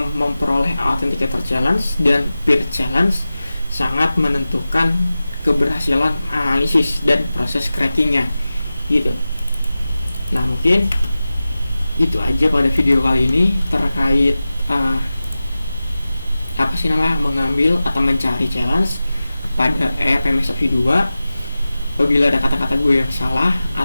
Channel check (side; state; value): both; inverted; correlation -0.95